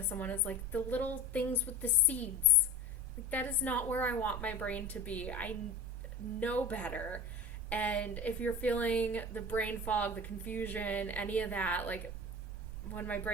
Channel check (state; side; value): normal; both; correlation 0.31